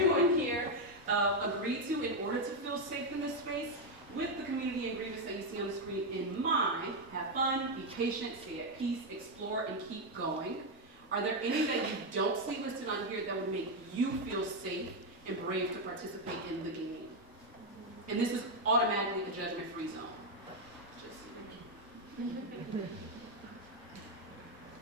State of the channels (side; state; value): both; normal; correlation 0.04